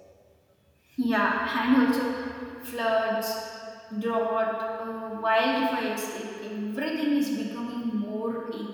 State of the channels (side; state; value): both; identical; correlation 1.00